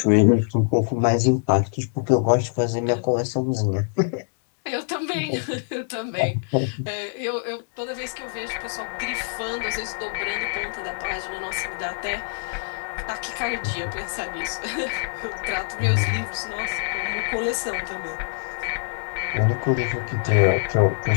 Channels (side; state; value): right; silent; digital silence